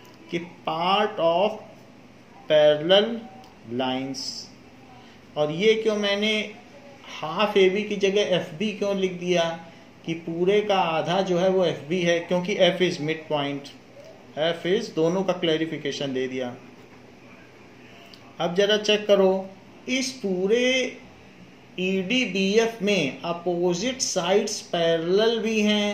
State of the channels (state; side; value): identical; both; correlation 1.00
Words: कि पार्ट ऑफ पैरेलल लाइंस। और ये क्यों मैंने हाफ AB की जगह FB क्यों लिख दिया कि पूरे का आधा जो है वो FB है, क्योंकि F is mid point, F is, दोनों का क्लैरिफिकेशन दे दिया। अब जरा चेक करो, इस पूरे EDBF में अपोजिट साइड्स पैरेलल भी